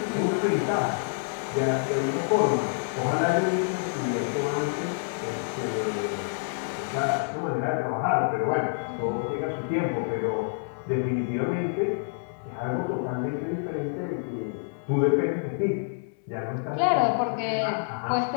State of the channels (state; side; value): silent; right; 60 dB below the other